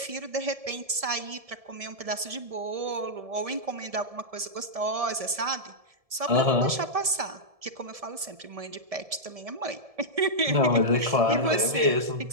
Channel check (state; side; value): late; left; 1.7 ms